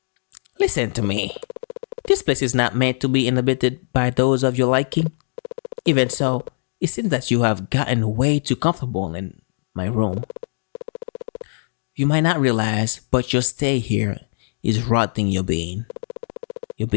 Listen to me. This place is not meant to be inhabited by those of your liking. Even so, it seems that you have gotten way too comfortable in my room. You might not realize, but your stay here is rotting your being. Your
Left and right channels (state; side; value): silent; right; digital silence